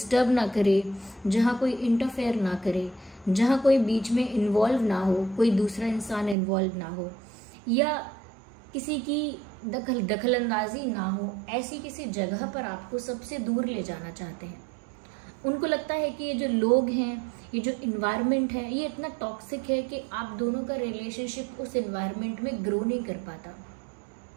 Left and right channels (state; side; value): drops out; left; at 6.4 s